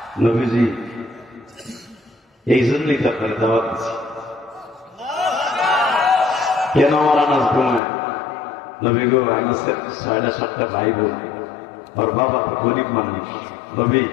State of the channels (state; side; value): drops out; right; at 7.8 s